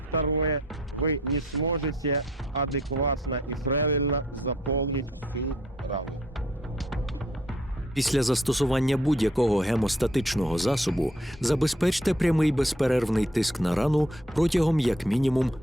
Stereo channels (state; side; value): normal; both; correlation 0.63